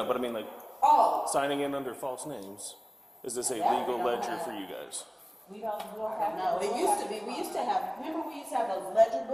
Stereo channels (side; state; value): both; identical; correlation 1.00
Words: but I mean like Oh, signing in under false names. Is this a legal ledger for you guys? We don't have. No, it used to be, we used to have, remember we used to have those ledger